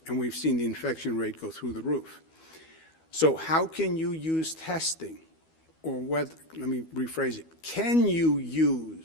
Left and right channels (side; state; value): right; late; 12 ms